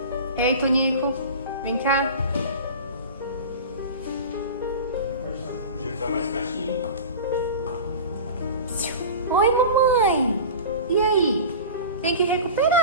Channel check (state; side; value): inverted; both; correlation -0.33